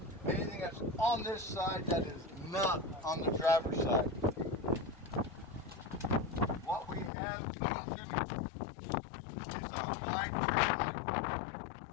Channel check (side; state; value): right; drops out; at 7.1 s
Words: anything that's on this side that is not on the driver's side. What we have is our